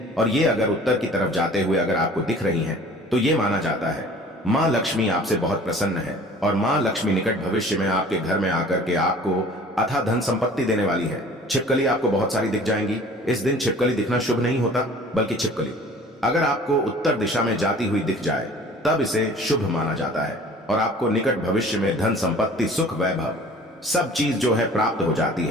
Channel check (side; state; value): both; normal; correlation 0.47